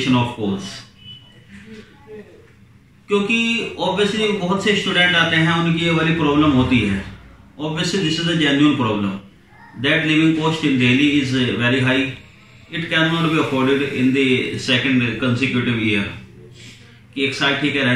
of course? क्योंकि obviously बहुत से student आते हैं, उनकी ये वाली problem होती है। Obviously this is a genuine problem that living cost in Delhi is very high. It cannot be afforded in the second consecutive year. कि एक साल ठीक है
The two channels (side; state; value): both; identical; correlation 1.00